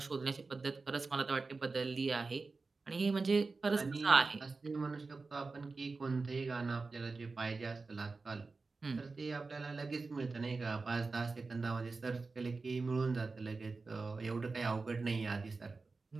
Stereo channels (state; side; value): quieter; left; 4.0 dB